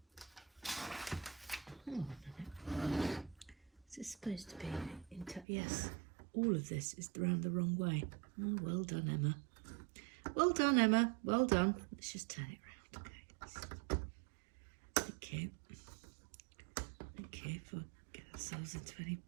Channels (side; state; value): left; drops out; at 5.5 s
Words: Hang on a minute. Is it supposed to be yes, all of this is round the wrong way. Oh, well done, Emma. Well done, Emma. Well done. Let's just turn it round. Okay. Okay, for get ourselves into any